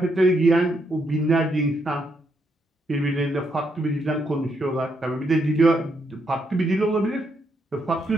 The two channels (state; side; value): normal; both; correlation 0.77